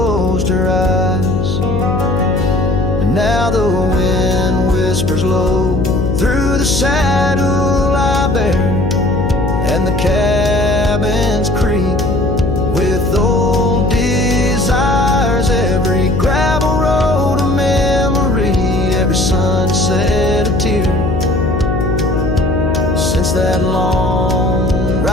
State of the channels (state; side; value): noise; left; hum, 1 dB below the sound